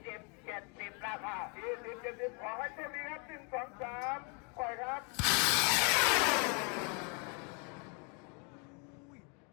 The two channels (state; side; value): quieter; right; 35.3 dB